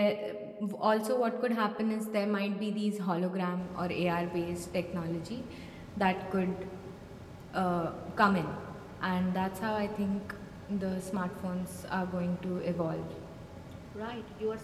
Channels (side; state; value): both; identical; correlation 1.00